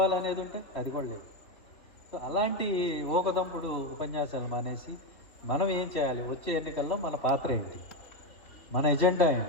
ఉంటే అది కూడా లేదు. సో అలాంటి ఊకదంపుడు ఉపన్యాసాలు మానేసి మనం ఏం చేయాలి, వచ్చే ఎన్నికల్లో మన పాత్ర ఏంటి, మన ఎజెండా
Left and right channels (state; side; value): late; right; 3.3 ms